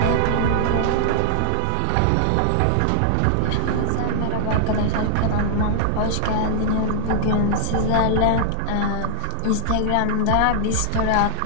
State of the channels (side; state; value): both; different; correlation 0.00